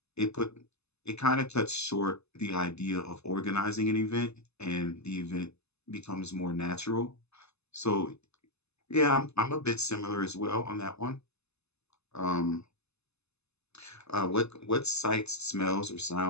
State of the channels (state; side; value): late; right; 0.80 ms